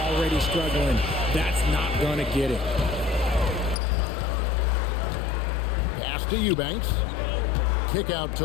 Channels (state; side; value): drops out; right; at 3.8 s